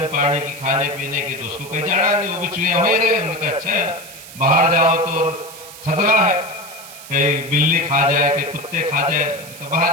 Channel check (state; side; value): noise; right; hiss, 16 dB below the sound